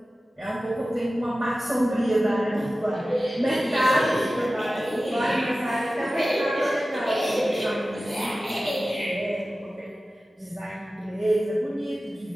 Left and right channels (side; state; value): both; normal; correlation 0.95